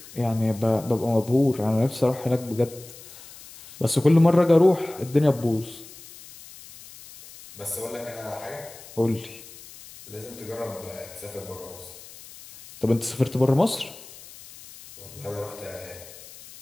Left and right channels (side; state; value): left; noise; hiss, 18 dB below the sound